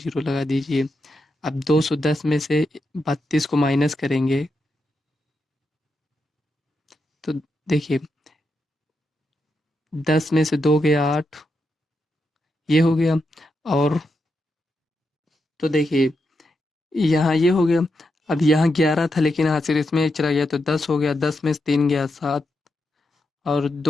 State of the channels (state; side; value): normal; both; correlation 0.85